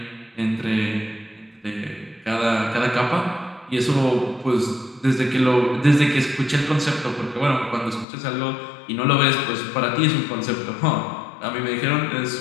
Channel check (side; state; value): right; drops out; at 8.1 s